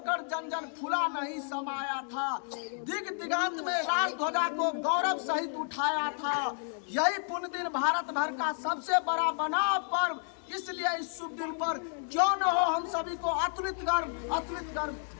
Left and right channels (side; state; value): right; silent; 57 dB below the other